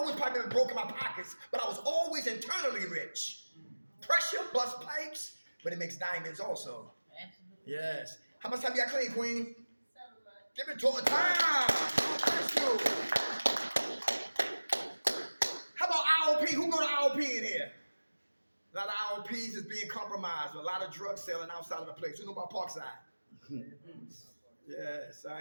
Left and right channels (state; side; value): inverted; both; correlation -1.00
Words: probably been broke in my pockets, but I was always internally rich. Pressure busts pipes, but it makes diamonds also. Yes. How much time you got clean, Queen? 7 months. Give it to her time. Bless you. How about IOP? Who go to IOP in here? A lot of IOPs is being compromised. A lot of drugs selling outside of the place. Who know about Parkside? Yes,